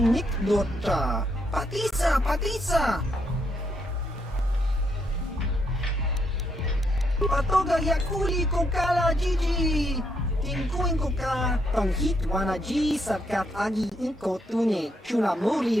nik dota, patisa, patisa. Patoga yakuli kokala Gigi. Tingkuin koka, tong hitwana ji satkat agi inko tune, chuna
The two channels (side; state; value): both; normal; correlation 0.76